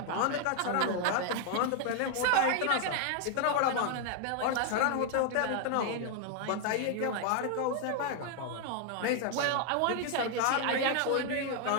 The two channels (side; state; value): both; different; correlation 0.00